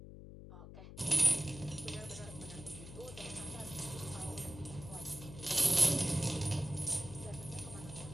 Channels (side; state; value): left; noise; hum, 13 dB below the sound